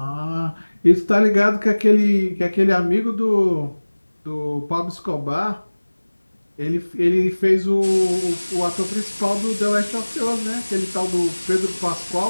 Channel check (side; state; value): both; inverted; correlation -1.00